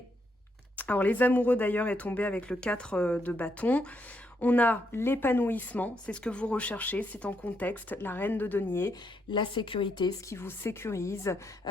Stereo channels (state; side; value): normal; both; correlation 0.77